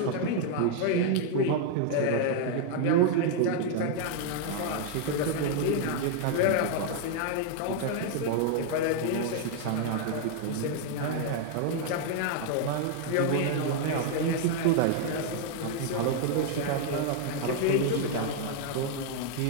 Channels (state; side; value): different; both; correlation 0.00